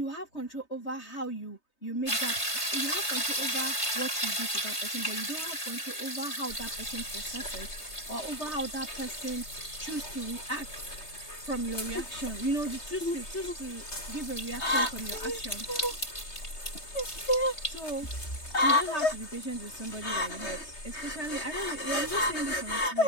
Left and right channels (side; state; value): right; late; 3.3 ms